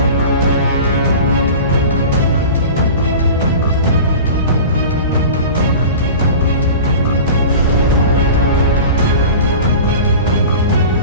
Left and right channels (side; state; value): both; inverted; correlation -0.35